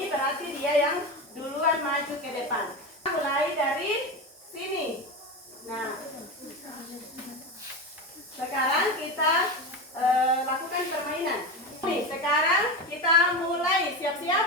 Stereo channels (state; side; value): normal; both; correlation 0.21